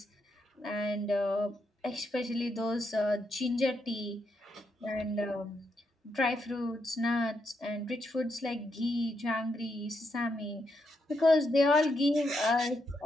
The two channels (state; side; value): normal; both; correlation 0.80